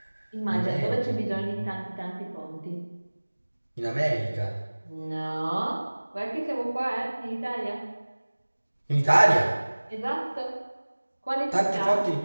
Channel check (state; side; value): inverted; both; correlation -1.00